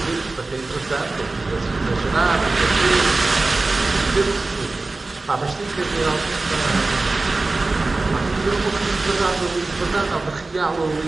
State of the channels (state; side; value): quieter; left; 3.4 dB